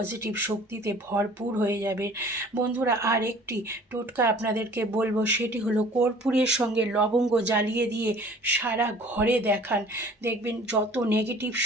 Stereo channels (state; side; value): normal; both; correlation 0.50